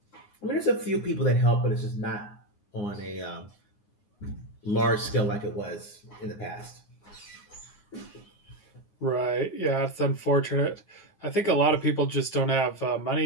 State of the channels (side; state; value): right; late; 9.7 ms